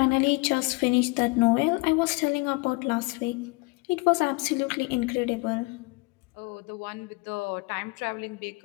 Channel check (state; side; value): quieter; right; 26.2 dB